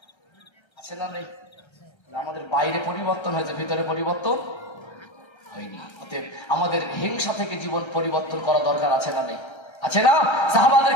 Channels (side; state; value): right; late; 1.3 ms